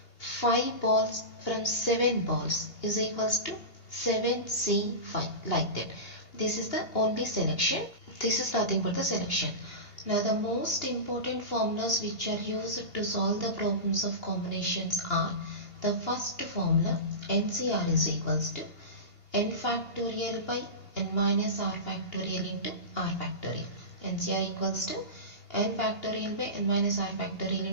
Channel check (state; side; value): late; right; 2.8 ms